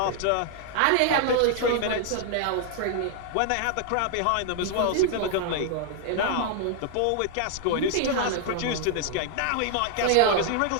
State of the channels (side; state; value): both; different; correlation 0.00